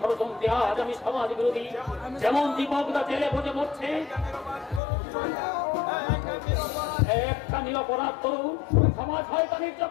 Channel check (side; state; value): right; drops out; at 4.8 s